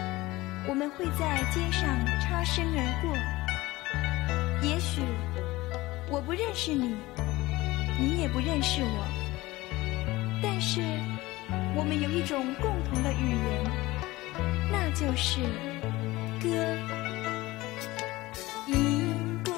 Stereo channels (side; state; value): right; quieter; 19.4 dB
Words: 我们会在街上擦身而过，也许我不认识你，你也不认识我，但是我们有一种共同的语言，那就是歌。一